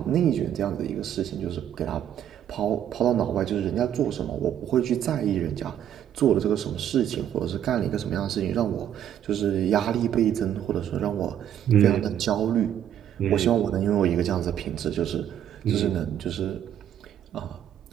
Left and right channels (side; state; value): left; quieter; 10.3 dB